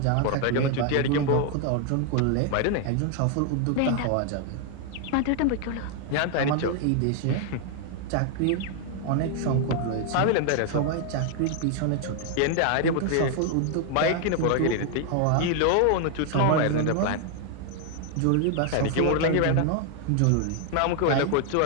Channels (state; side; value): different; both; correlation 0.00